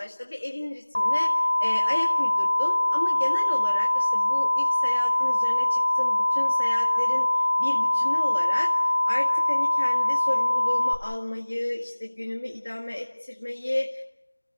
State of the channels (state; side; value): inverted; both; correlation -1.00